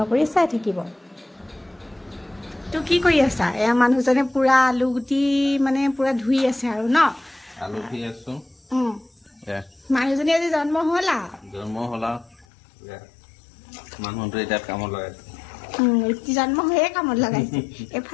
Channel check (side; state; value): right; drops out; at 12.5 s